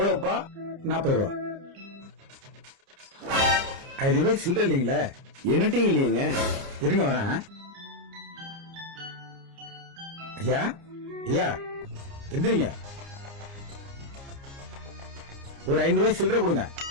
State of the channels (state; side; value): late; left; 29 ms